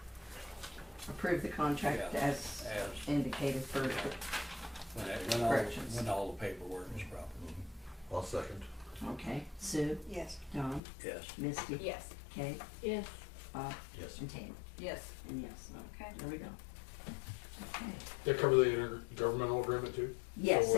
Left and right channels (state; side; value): drops out; right; at 10.8 s